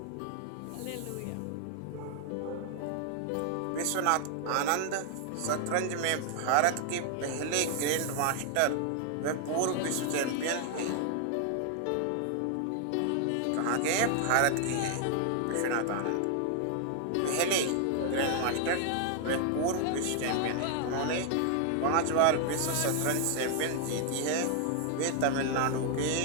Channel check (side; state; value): both; different; correlation 0.00